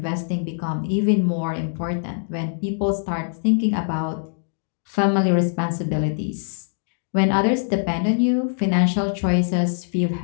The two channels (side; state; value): right; silent; digital silence